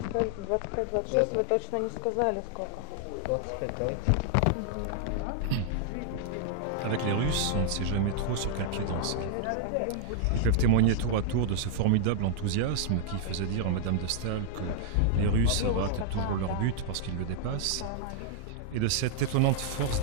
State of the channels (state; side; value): different; both; correlation -0.01